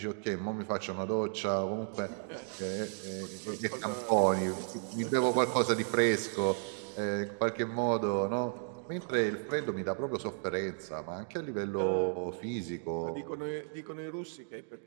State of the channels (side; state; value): left; silent; 55 dB below the other